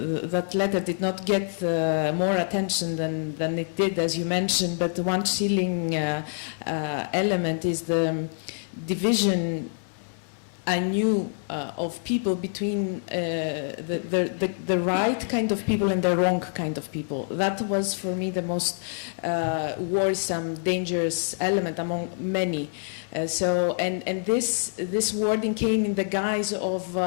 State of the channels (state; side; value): silent; right; digital silence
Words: letter did not get more attention than it did, as you mentioned. But one chilling element is the division anew of people between the right kind of people and the wrong kind of people. That was for me the most worrisome, dangerous element among many. And this wording came in the guise of,